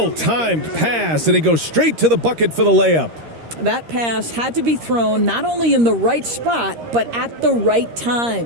pass, and he goes straight to the bucket for the layup. That pass had to be thrown not only in the right spot, but at the right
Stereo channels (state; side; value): late; left; 13 ms